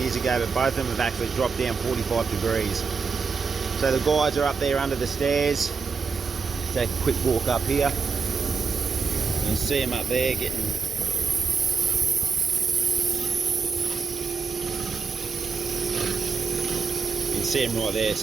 ago, but both of them have actually dropped down 45 degrees. So the guys are up there under the stairs. Take a quick walk up here. You can see them up there getting see them right there.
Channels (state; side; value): quieter; left; 5.1 dB